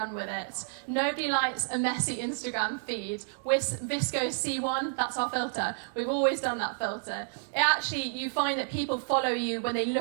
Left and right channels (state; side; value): silent; left; digital silence